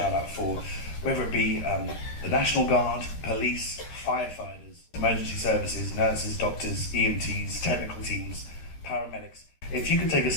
for whether it be the National Guard, police, firefighters, emergency services, nurses, doctors, EMTs, technical teams, paramedics. If you could take a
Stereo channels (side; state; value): right; late; 13 ms